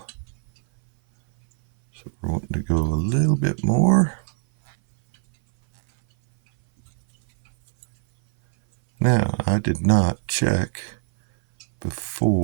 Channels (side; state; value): left; silent; 60 dB below the other